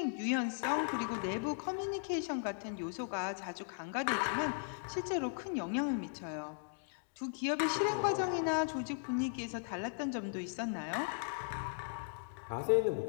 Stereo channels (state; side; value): silent; right; digital silence